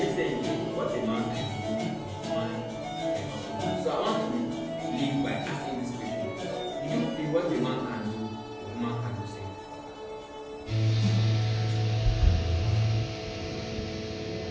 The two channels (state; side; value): identical; both; correlation 1.00